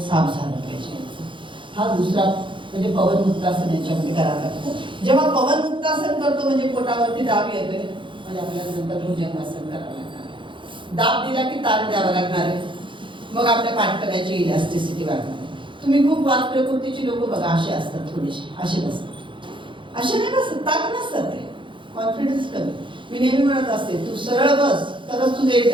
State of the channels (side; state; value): left; late; 0.24 ms